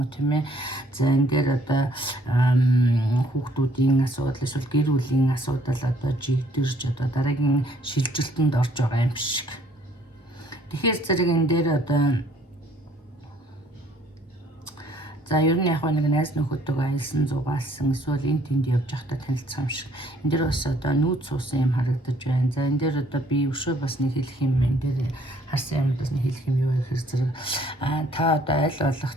тийм ээ. За энэ дээр одоо хүүхдүүдийн асуудал эсвэл гэр бүлийн асуудал одоо жигдэрж одоо дараагийн шилжилтэнд орж байгаа юм шиг. Тэгэхээр зэрэг энэ дээр одоо за ер нь яг нэг найз нөхөдтэйгээ аялсан зугаалсан эсвэл энэ тэнд явж байхдаа танилцсан юм шиг. Энэ дээр бас одоо нүүд суусан юм харагдаж байна. За энэ дээр одоо би өшөө бас нэг хэлэх юм энэ дээр харсан юм бас нэг хэлэх юм юу гэхээр зэрэг та одоо аль болох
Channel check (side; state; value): both; normal; correlation 0.62